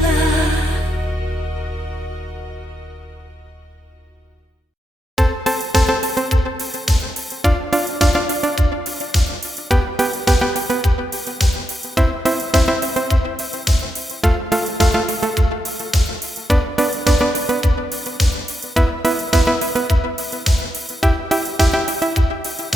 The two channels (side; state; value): both; normal; correlation 0.85